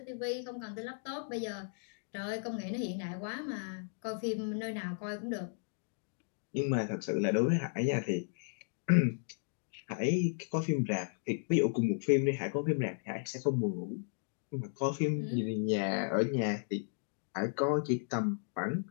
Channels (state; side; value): silent; right; digital silence